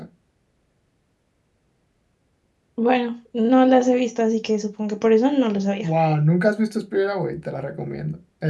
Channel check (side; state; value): both; identical; correlation 1.00